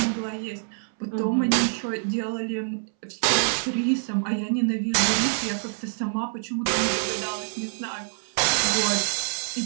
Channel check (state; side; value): silent; left; 61 dB below the other